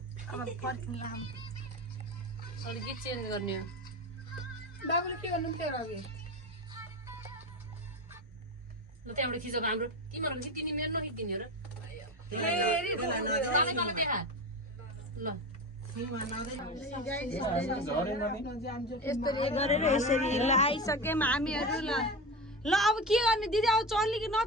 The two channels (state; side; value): normal; both; correlation 0.23